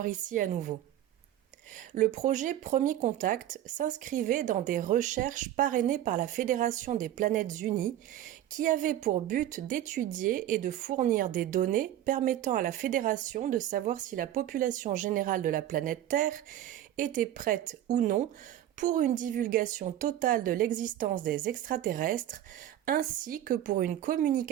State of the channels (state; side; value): quieter; left; 12.3 dB